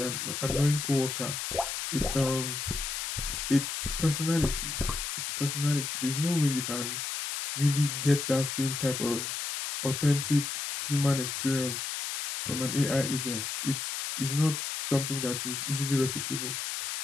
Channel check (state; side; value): noise; left; hiss, 3 dB below the sound